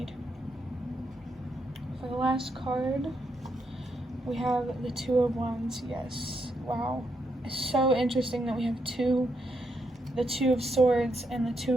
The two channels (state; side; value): normal; both; correlation 0.79